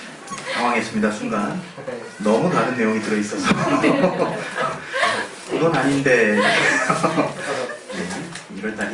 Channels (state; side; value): identical; both; correlation 1.00